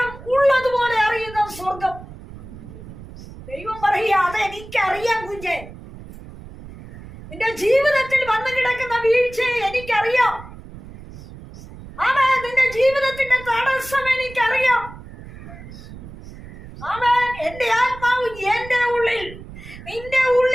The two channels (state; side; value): noise; right; rumble, 16 dB below the sound